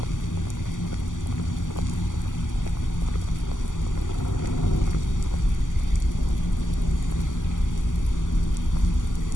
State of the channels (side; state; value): right; late; 0.87 ms